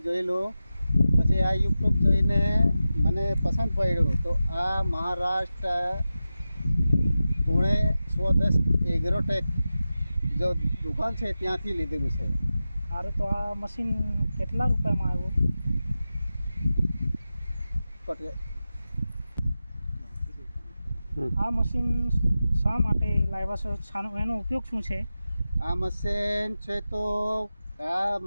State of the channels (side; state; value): both; inverted; correlation -0.93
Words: જોયેલું, પછી આ યુટ્યુબ જોઈને મને પસંદ પડ્યું, તો આ મહારાષ્ટ્ર પુણે 110 એગ્રોટેક જો દુકાન છે ત્યાંથી લીધેલું છે. સારું, તો આ મશીન કેટલા રૂપિયામાં આવ્યું? આ મશીન શા માટે લાવ્યા છો? એનો ઉપયોગ શું છે? આ મશીન છે તો આ